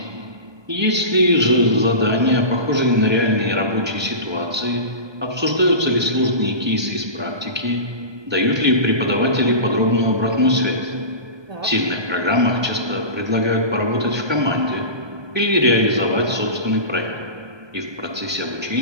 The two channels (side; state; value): left; late; 1.2 ms